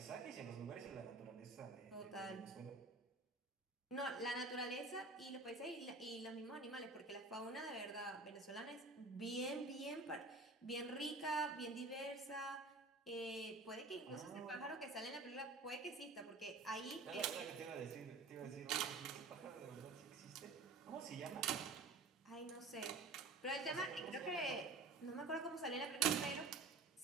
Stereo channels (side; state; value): left; quieter; 3.6 dB